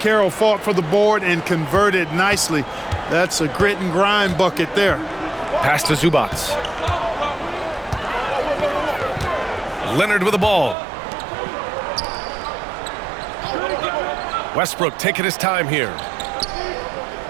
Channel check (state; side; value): drops out; left; at 10.8 s